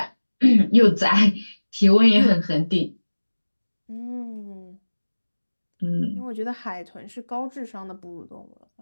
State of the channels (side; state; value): both; inverted; correlation -1.00